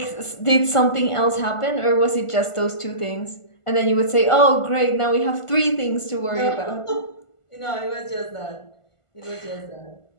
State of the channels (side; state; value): right; late; 1.5 ms